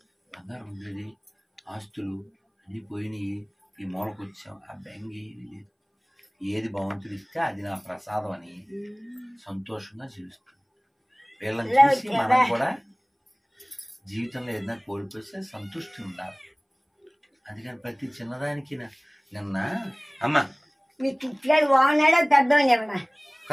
బంగారం ఉండేది, ఆస్తులు అన్నీ పోయినాయి, ఈ మూలకు వచ్చాం, ఆ బెంగి లేదు. ఏది భగవంతుడు ఇస్తే అది నా ప్రసాదం అని సంతోషంగా జీవిస్తుంది. వీళ్ళని చూసి మనం కూడా జీవితంలో ఏదైనా కోల్పోతే సంతృష్టి ఉండాలి. అందుకని ప్రతి చిన్నదానికి నిన్న అమ్మ మీ కిట్లాడు బాగున్నాడో పెద్దోని ఏమన్నా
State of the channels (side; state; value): both; identical; correlation 1.00